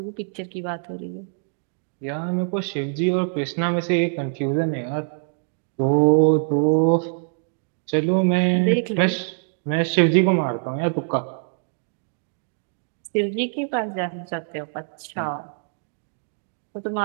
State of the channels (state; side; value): silent; left; digital silence